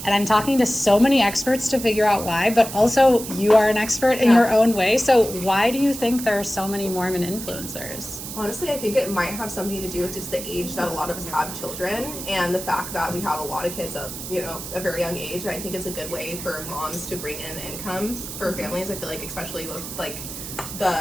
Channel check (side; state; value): right; noise; hiss, 9 dB below the sound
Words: And I'm talking to so many experts to figure out why, but also you are an expert in your own way. So why do you think there are so many Mormon influencers? Honestly, I think it might have something to do with just the age that a lot of us have children and the fact that we have a lot of kids at, a very young age. And I think it's a good way for moms to bring in income for families. I feel like especially with like